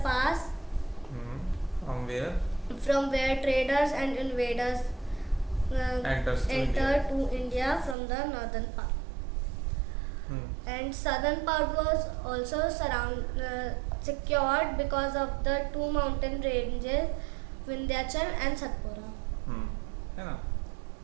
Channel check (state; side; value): drops out; left; at 8.0 s